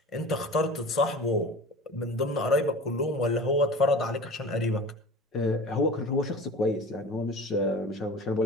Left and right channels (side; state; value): both; normal; correlation 0.38